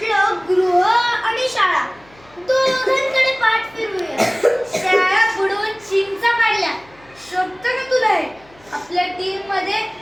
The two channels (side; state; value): left; noise; hum, 27 dB below the sound